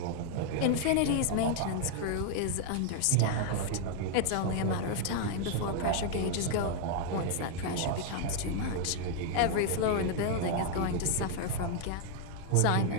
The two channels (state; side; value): different; both; correlation 0.00